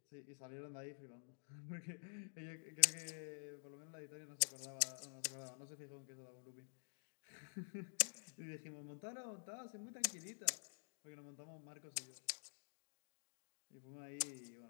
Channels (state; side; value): silent; right; digital silence